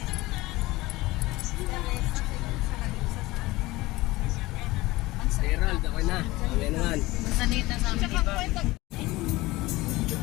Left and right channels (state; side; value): quieter; right; 19.7 dB